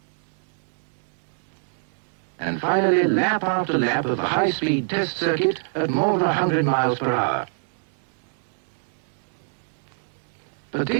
And finally, lap after lap of the high-speed test circuit at more than 100 miles per hour. But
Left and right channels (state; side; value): silent; left; digital silence